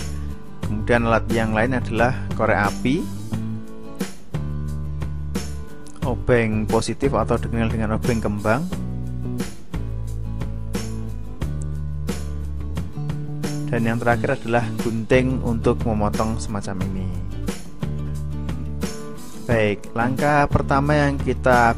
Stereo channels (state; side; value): identical; both; correlation 1.00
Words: Kemudian alat yang lain adalah korek api, obeng positif atau dikenal dengan obeng kembang, dan yang terakhir adalah gunting untuk memotong semacam ini. Baik, langkah pertama yang kita